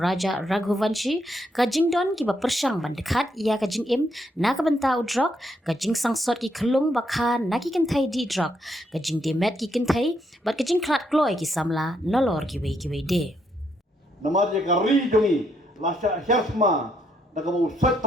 Raghuvanshi kajing don kiba persang bandekat ia kajing im na kabenta udrok kajing sangsot ki kelung bakha na ki kentai di drok kajing demet ki kentai bat kajing klat kloy ki samla nolor kiway de Nama dia kari jongi lasya hyasma dakamu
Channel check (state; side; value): normal; both; correlation 0.75